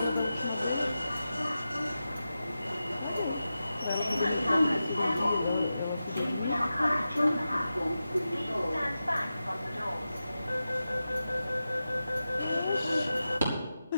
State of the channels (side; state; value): both; inverted; correlation -0.92